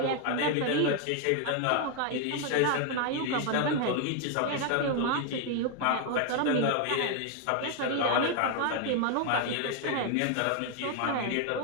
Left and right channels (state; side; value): different; both; correlation 0.00